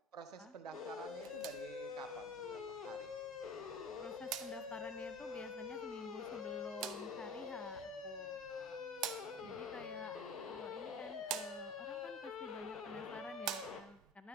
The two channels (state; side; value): normal; both; correlation 0.38